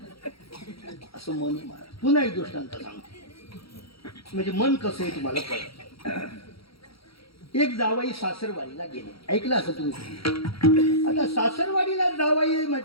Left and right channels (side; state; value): right; late; 0.75 ms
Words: असं मन मारा पुन्हा एक दृष्टांत सांगतो म्हणजे मन कसं आहे तुम्हाला कळत एक जावाई सासरवाडीला गेले ऐकलं असं तुम्ही आता सासरवाडीला जावाई